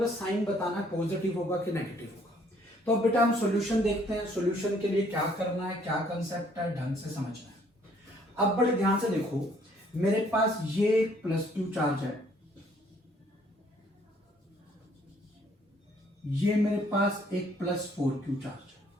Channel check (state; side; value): normal; both; correlation 0.63